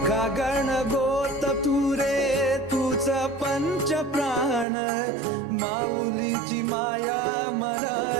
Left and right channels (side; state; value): left; drops out; at 4.7 s